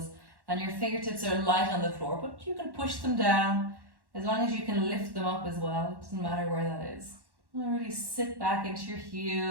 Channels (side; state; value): left; late; 1.1 ms